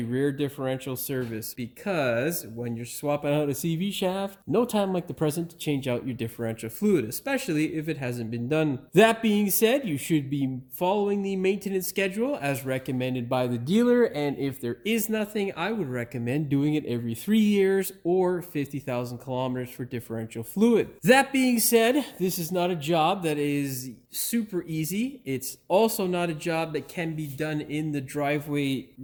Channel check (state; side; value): identical; both; correlation 1.00